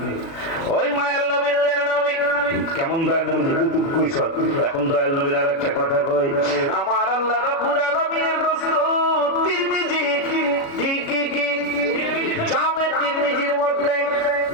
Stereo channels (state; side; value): late; right; 36 ms